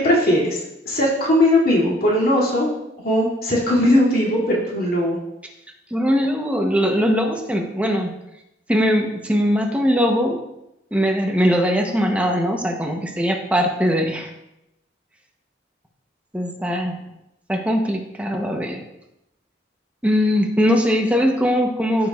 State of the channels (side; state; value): both; normal; correlation 0.70